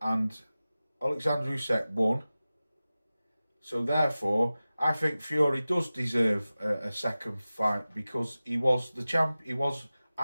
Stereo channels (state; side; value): inverted; both; correlation -0.96